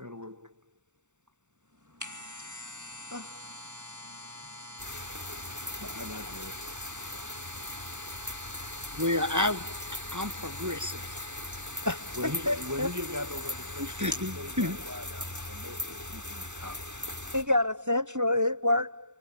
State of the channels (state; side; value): late; left; 0.84 ms